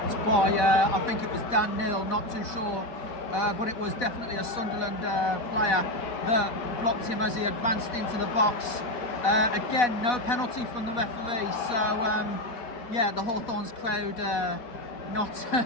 by, I think it was Dan Neal, not too sure. But it was definitely a Sunderland player that blocked him as he advanced into the box. Again, no penalty from the referee. So yeah, the Hawthorns crowd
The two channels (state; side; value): late; right; 4.1 ms